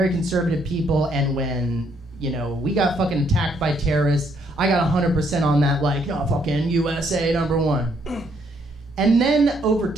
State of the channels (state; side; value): normal; both; correlation 0.70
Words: conservative people, and when, we got fucking attacked by terrorists, I got 100% on that, like, no, fucking USA #1. And then over